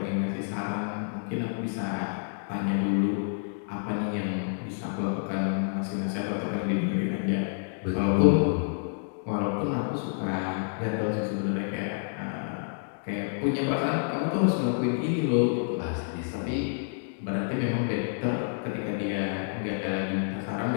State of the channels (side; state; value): right; silent; digital silence